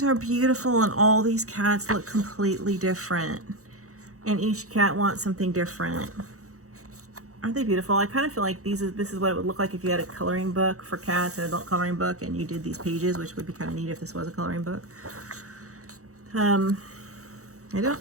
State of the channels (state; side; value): late; left; 0.65 ms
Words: are beautiful, and all these cats look completely different. And each cat wants something different. Aren't they beautiful? I kind of feel like this is what it would look like if you had a coloring book for cats, an adult coloring book, and you did these pages, which would be kind of neat if this was a coloring book. I